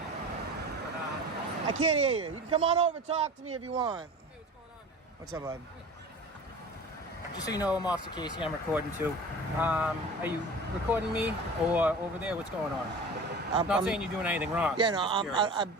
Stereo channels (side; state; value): both; normal; correlation 0.37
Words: I can't hear you. You can come on over and talk to me if you want. Hey, what's going on, man? What's up, bud? Just so you know, I'm Officer Casey. I'm recording too. Are you recording me or over there? What's going on? I'm not saying you're doing anything wrong. Yeah, no,